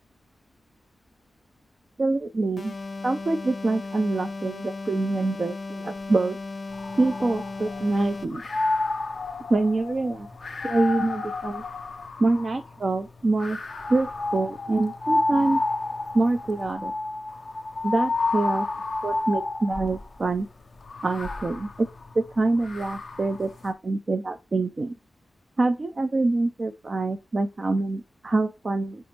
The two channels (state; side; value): normal; both; correlation 0.95